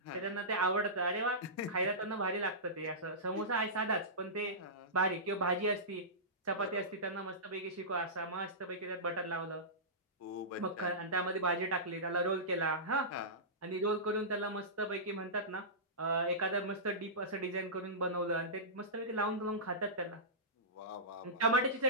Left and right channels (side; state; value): both; normal; correlation -0.19